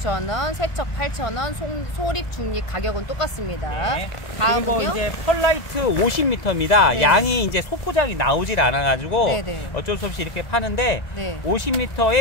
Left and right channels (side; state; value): right; late; 2.0 ms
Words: 세척 8,000원, 소립 중립 가격은 똑같습니다. 네. 다음은요. 그리고 이제 펄라이트 50m입니다. 네. 양이 이제 소포장이 나오질 않아가지고 네네. 어쩔 수 없이 이렇게 파는데 네.